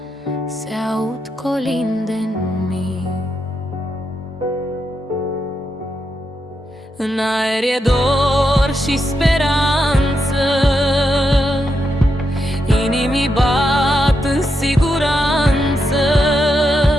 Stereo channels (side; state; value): both; normal; correlation 0.84